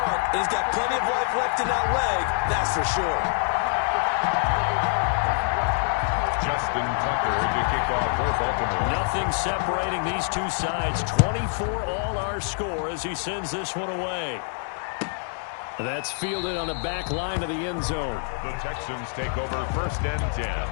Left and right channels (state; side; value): silent; right; 61 dB below the other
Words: and he's got plenty of life left in that leg, that's for sure. Justin Tucker to kick off for Baltimore. Nothing separating these two sides. 24 all our score as he sends this one away. That's fielded on the back line of the end zone. The Texans take over 1st and 10